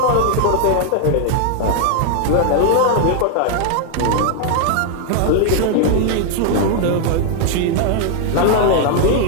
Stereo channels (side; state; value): both; different; correlation 0.00